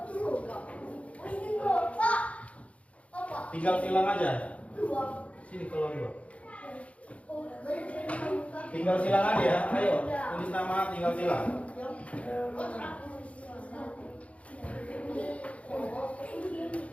Tinggal silang aja. Sini keluar dulu. Tinggal silang aja ya. Ayo, tulis nama, tinggal silang.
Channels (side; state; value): right; late; 0.064 ms